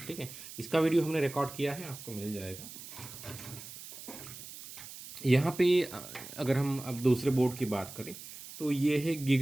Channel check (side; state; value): right; noise; hiss, 13 dB below the sound